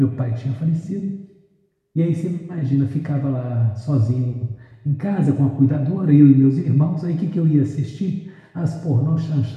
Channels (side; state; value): both; identical; correlation 1.00